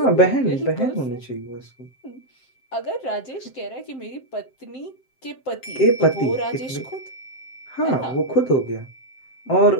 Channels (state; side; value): late; right; 7.6 ms